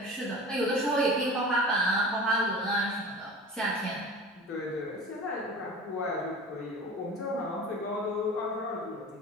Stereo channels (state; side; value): normal; both; correlation 0.37